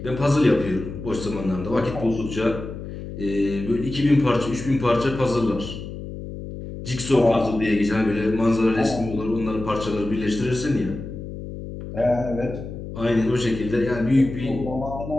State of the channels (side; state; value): left; noise; hum, 10 dB below the sound